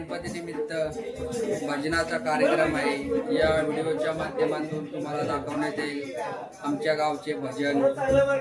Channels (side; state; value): both; identical; correlation 1.00